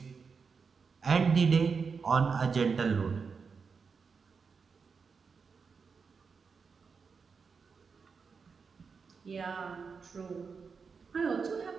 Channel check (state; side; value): quieter; left; 5.4 dB